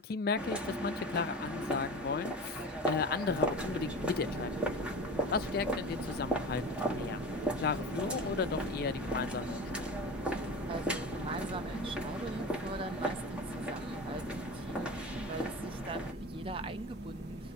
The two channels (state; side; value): normal; both; correlation 0.32